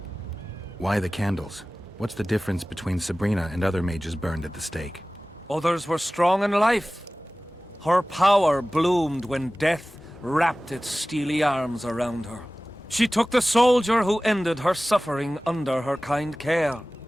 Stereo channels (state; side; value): normal; both; correlation 0.97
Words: Why the candles? What's the difference between Sabrina and other mages burned at the stake? Others were strong in life. Her power bloomed when death wrapped its steely arms around her. She took the soldier who ended her suffering under her kind care.